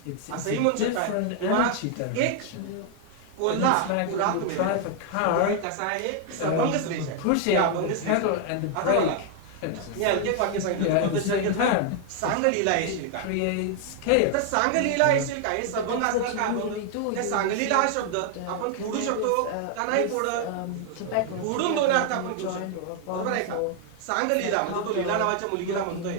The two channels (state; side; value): different; both; correlation 0.00